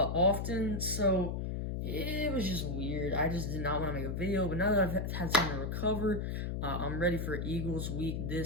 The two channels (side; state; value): left; noise; hum, 2 dB below the sound